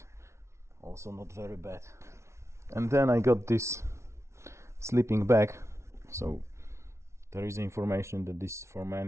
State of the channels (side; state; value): left; late; 0.13 ms